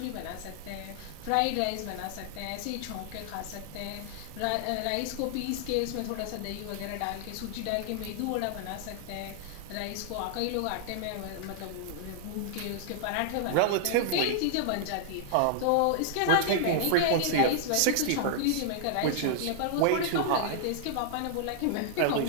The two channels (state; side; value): different; both; correlation -0.01